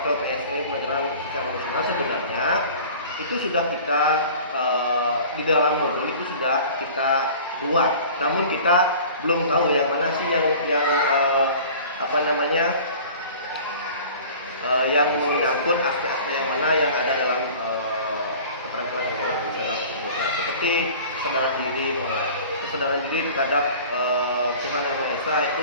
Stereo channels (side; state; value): both; inverted; correlation -0.43